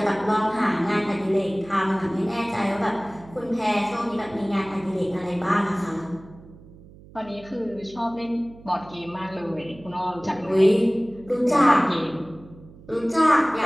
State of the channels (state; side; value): noise; right; hum, 21 dB below the sound